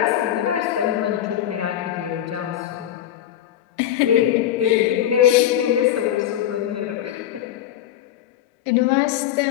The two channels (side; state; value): right; quieter; 11.6 dB